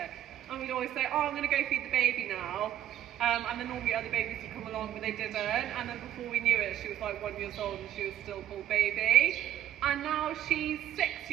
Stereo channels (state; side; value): quieter; left; 11.5 dB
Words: and we'd always say, oh, I'm gonna go feed the baby now. And then normally other babies would come along, but they didn't. And then before we knew it, she was like 1 year old, and she was still called Baby. And now she's 6